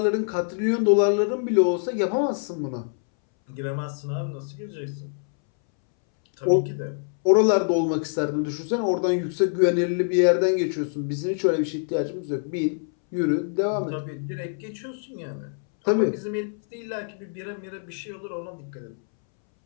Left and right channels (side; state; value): right; silent; 62 dB below the other